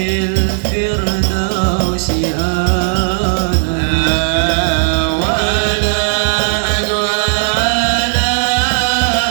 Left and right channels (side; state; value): left; silent; digital silence